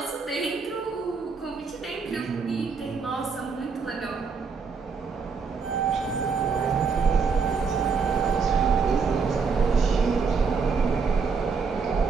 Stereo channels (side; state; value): left; quieter; 5.2 dB